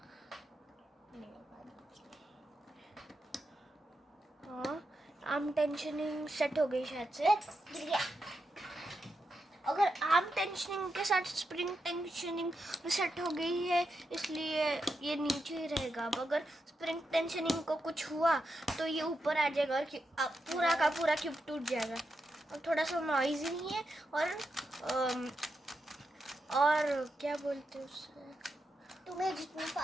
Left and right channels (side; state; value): both; normal; correlation 0.86